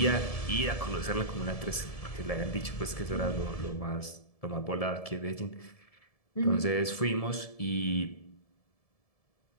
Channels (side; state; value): right; late; 1.7 ms